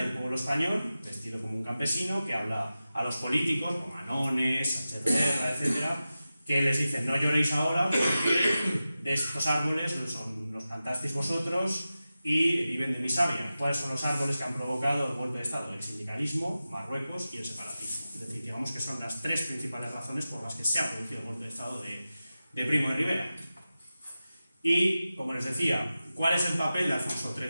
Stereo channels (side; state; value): both; inverted; correlation -0.94